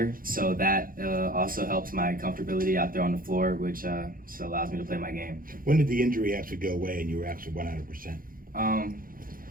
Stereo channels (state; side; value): late; left; 0.41 ms